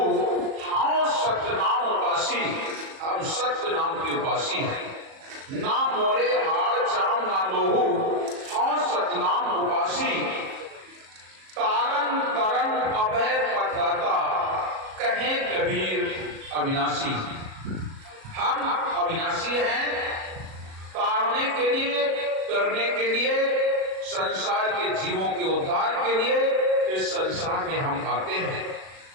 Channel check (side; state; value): left; late; 37 ms